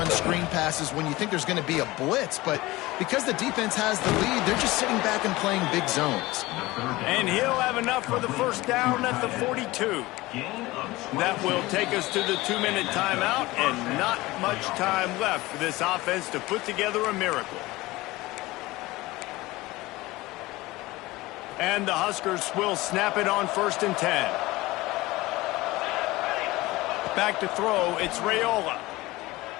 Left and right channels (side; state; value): right; quieter; 19.8 dB